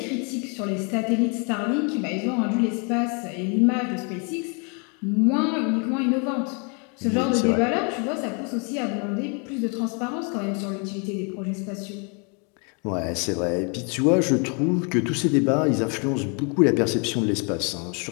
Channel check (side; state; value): right; quieter; 35.8 dB